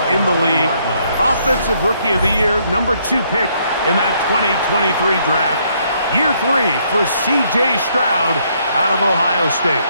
in the league. Offensive Rookie of the Year, #2 pick in that 2023 draft. Year 3 for C.J. Stroud out of Ohio State.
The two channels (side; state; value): both; inverted; correlation -0.70